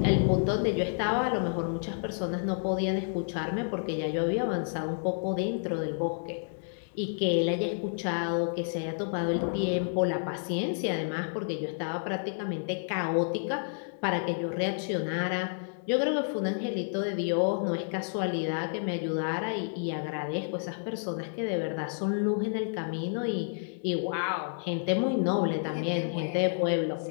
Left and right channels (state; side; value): silent; right; digital silence